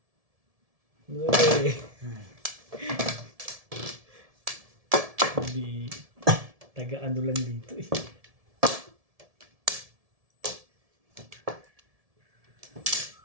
Uy. Taga-ano lang dito eh.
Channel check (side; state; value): left; late; 1.7 ms